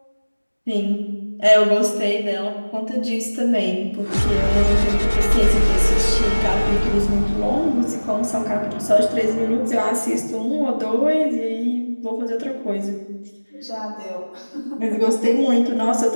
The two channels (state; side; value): inverted; both; correlation -1.00